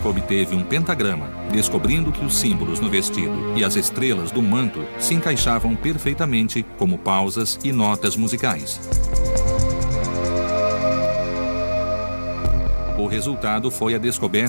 obteve um pentagrama, descobrindo que os símbolos no vestido e as estrelas do manto se encaixavam perfeitamente como pausas e notas musicais. O resultado foi a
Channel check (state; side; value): inverted; both; correlation -1.00